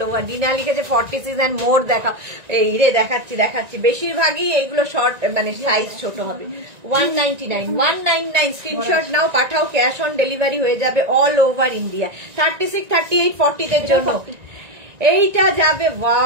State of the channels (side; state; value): left; late; 1.9 ms